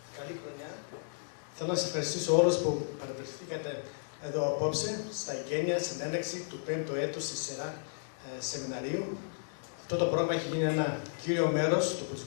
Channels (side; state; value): right; silent; digital silence